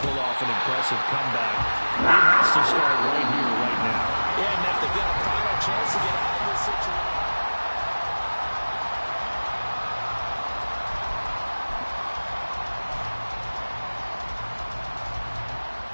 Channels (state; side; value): inverted; both; correlation -1.00